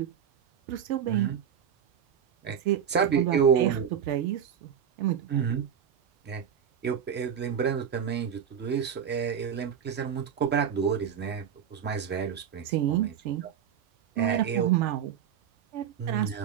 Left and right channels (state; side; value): quieter; left; 8.3 dB